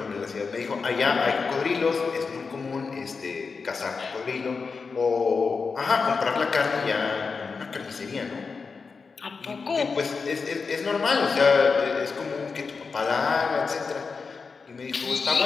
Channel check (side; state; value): right; quieter; 4.9 dB